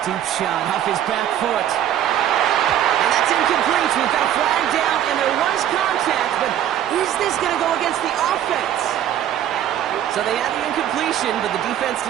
Deep shot off his back foot. And that's incomplete. We've got a flag down, and there was contact, but is this going to go against the offense? So they had the incompletion, but the defense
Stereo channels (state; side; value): quieter; left; 11.0 dB